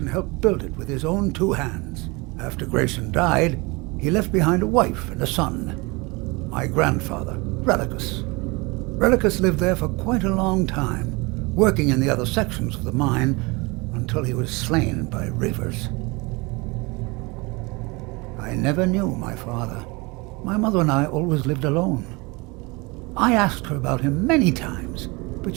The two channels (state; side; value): quieter; left; 26.2 dB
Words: helped build it with his own 2 hands. After Grayson died, he left behind a wife and a son. My grandfather, Relicus. Relicus lived there for quite a long time, working in the other sections of the mine until he was slain by reavers. I never knew my father. My mother and I always lived alone. I asked her about him many times, but